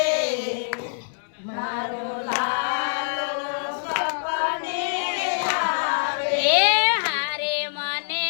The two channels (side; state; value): right; silent; digital silence